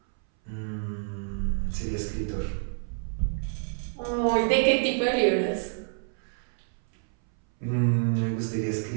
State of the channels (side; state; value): left; silent; 59 dB below the other